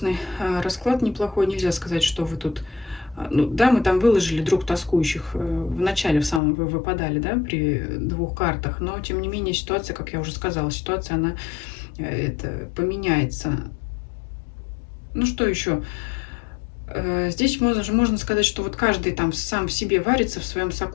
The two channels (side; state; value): right; drops out; at 6.4 s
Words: расклад, неплохой. Нельзя сказать, что вы тут Ну, да, мы там выложили друг тоскующих в начале, в самом вы выпадали, да, при двух картах, но, тем не менее, ситуация, как я уже сказала, ситуация, она это поменяется. Ну, что еще? Здесь можно сказать, что вот каждый там сам в себе варится, в своем